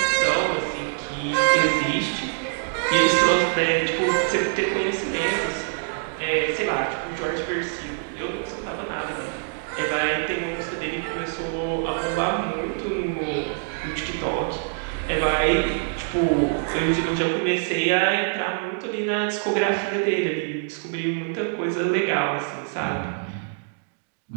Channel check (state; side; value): silent; left; digital silence